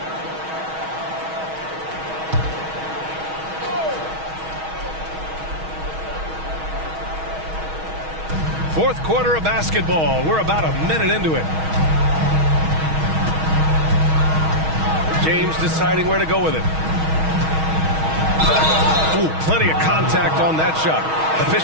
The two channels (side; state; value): left; late; 6.3 ms